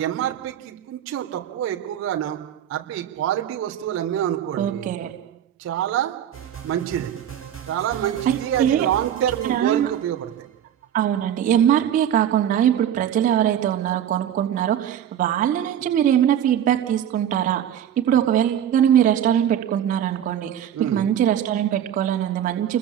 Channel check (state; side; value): quieter; left; 10.0 dB